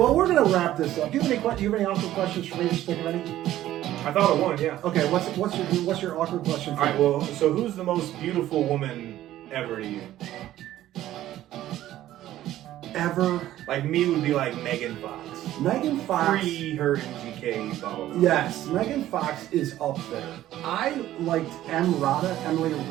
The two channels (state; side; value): quieter; left; 13.7 dB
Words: we're gonna wrap this up. Do you have any awkward questions for me to stick ready? I thought of one, yeah. Okay, what's your awkward question? All right, well, so who's the most beautiful woman ever to you? Ever? Like me would be like Megan Fox. Megan Fox. Pre her MGK, blah, blah, blah. Yes, Megan Fox is up there. I liked Emily